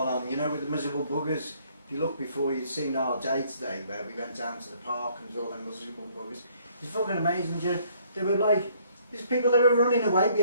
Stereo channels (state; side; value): inverted; both; correlation -0.63